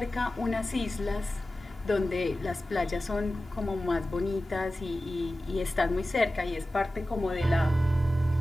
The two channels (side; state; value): both; normal; correlation 0.95